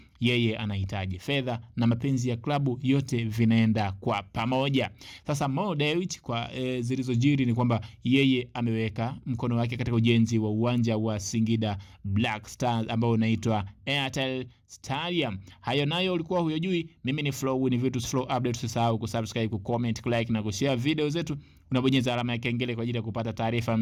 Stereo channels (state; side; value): identical; both; correlation 1.00